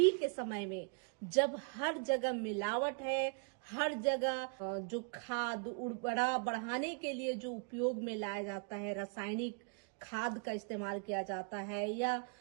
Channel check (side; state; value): left; quieter; 37.4 dB